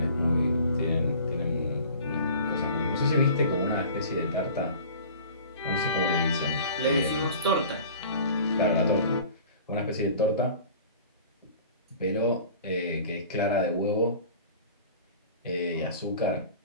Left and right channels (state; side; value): inverted; both; correlation -0.44